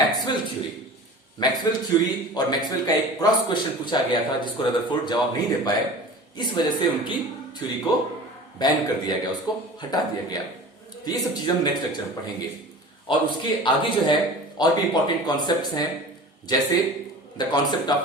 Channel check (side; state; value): both; normal; correlation 0.38